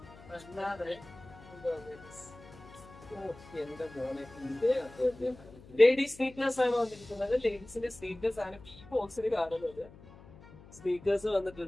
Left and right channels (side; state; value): left; noise; hum, 20 dB below the sound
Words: അല്ലാതെ എന്റെ മോനെ ലേഡീസ് സ്നീക്കേഴ്സ് ആണ് വന്നിരിക്കുന്നത്. ലേഡീസിന്റെ സ്നീക്കേഴ്സ് ആണ് ഈ ബോക്സിൽ കാണുന്നത്. സ്നീക്കേഴ്സ്